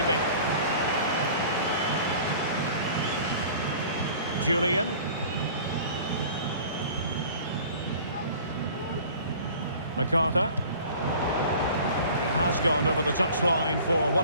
Julian. MacArthur. It has gone over the touchline for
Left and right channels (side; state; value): both; inverted; correlation -0.46